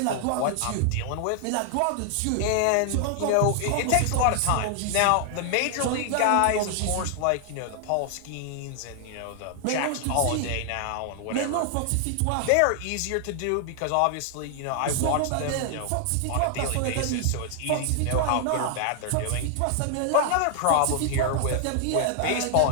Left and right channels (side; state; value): both; different; correlation 0.00